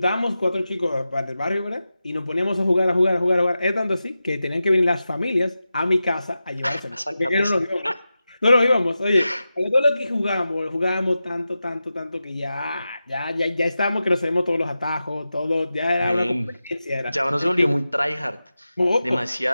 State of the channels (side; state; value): both; inverted; correlation -0.92